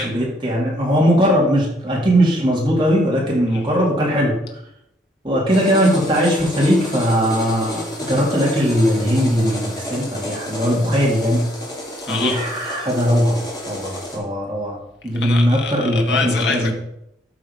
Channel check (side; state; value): both; normal; correlation 0.68